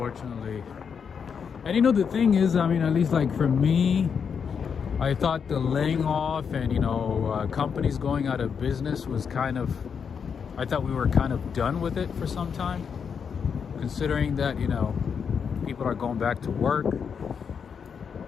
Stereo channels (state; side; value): quieter; right; 6.6 dB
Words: And you know, the thing is, I mean, at least like for me, I thought the laying off and, you know, companies going out of business was kind of, I thought we were kind of done with it for some time. Considering that, you know, people are going back to work.